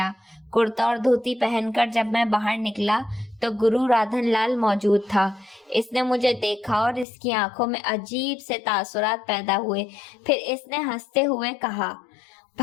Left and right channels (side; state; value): right; drops out; at 7.1 s